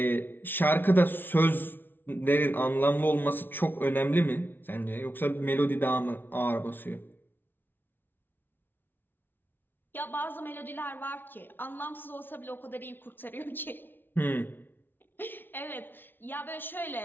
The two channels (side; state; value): right; late; 0.099 ms